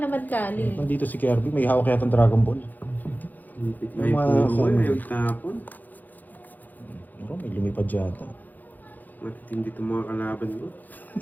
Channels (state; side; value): late; right; 0.084 ms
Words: Kali. Nandito si Kirby, may hawak yata ng Dragon Ball. May puro mo eh. May tapon. Pero may lumipad yata. Matitindi itong mga kalaban mo.